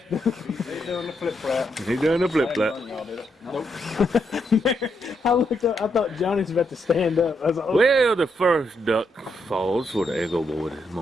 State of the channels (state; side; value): normal; both; correlation 0.79